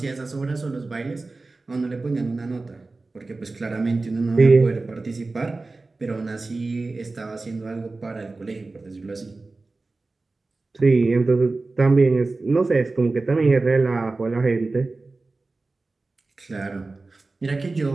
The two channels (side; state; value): left; quieter; 3.5 dB